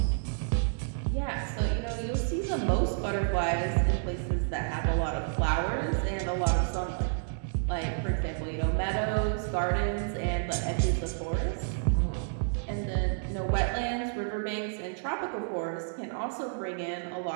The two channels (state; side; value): silent; left; digital silence